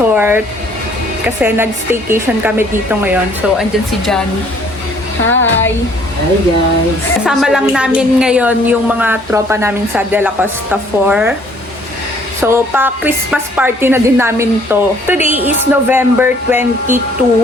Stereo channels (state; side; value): normal; both; correlation 0.60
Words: kasi nag-staycation kami dito ngayon. So andyan si Johnny. Hi! Hi guys! Kasama lang namin ngayon yung mga tropa namin sa De La Costa 4. So, pa-Christmas party na din namin to. Today is November 22,